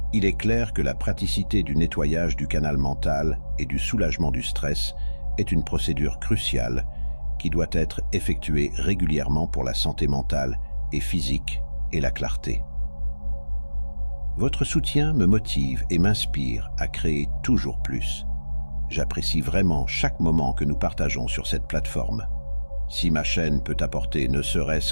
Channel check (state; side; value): inverted; both; correlation -1.00